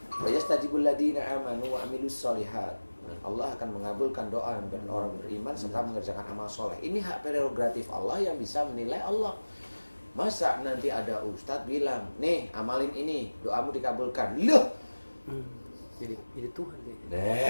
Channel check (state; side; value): inverted; both; correlation -1.00